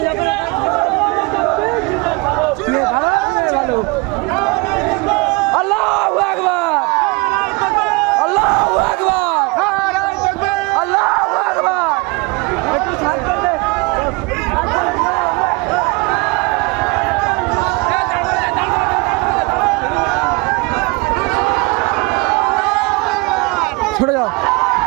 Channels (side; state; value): left; quieter; 27.2 dB